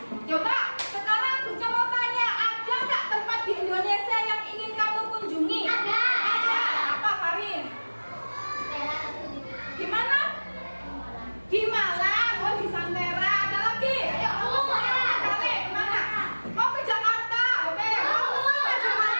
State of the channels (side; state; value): both; inverted; correlation -1.00